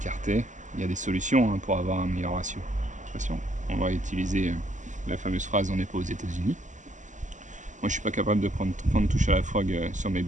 Il y a des solutions hein, pour avoir un meilleur ratio. Attention, on va utiliser la fameuse phrase « on n'est pas aux États-Unis ». Moi, je suis pas capable de prendre 30 touches à la frog sur mes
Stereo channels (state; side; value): late; left; 0.36 ms